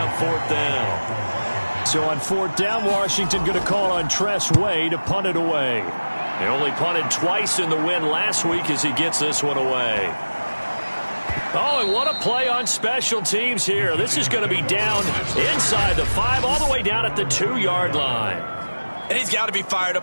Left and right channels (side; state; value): both; inverted; correlation -1.00